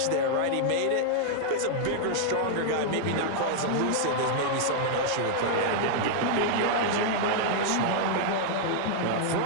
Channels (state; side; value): different; both; correlation -0.01